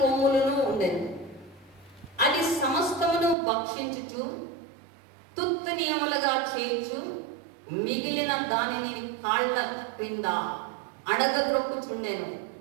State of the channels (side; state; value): left; drops out; at 3.4 s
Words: ఉండెను. అది సమస్తమును భక్షించుచు తుత్తనీయములుగా చేయుచు మిగిలిన దానిని కాళ్ళ క్రింద అడగద్రొక్కుచుండెను.